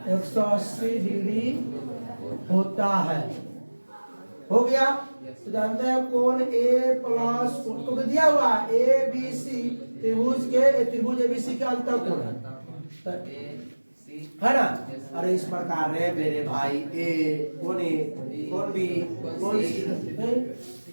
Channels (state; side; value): inverted; both; correlation -1.00